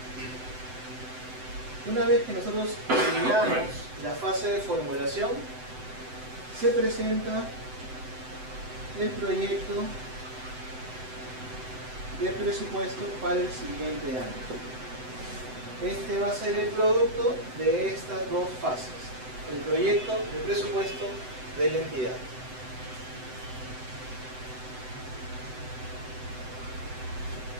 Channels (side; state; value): left; late; 7.9 ms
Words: Una vez que nosotros terminamos la fase de formulación, se presenta el proyecto de presupuesto para el siguiente año. Este va a ser el producto de estas dos fases, el proyecto de presupuesto de la entidad.